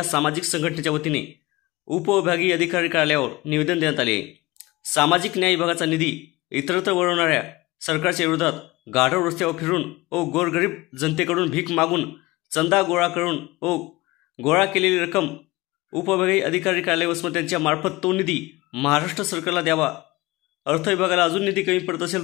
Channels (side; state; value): right; quieter; 21.0 dB